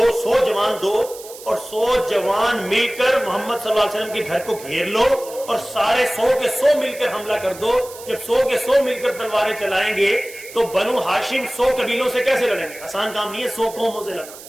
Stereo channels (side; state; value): right; noise; hiss, 16 dB below the sound